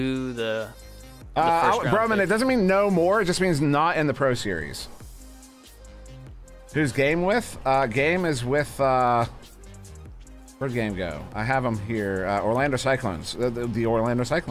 the first round Broman, pick. it doesn't mean no more. It just means not in the Pro Series. Who's Game with? Game is with. Where'd Game go? I have them here. Orlando Cyclones. The Orlando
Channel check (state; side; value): identical; both; correlation 1.00